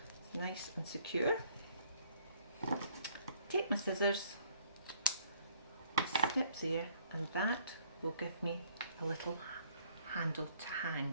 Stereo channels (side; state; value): both; inverted; correlation -0.62